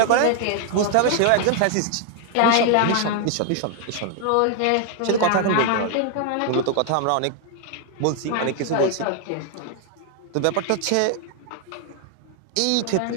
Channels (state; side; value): different; both; correlation 0.00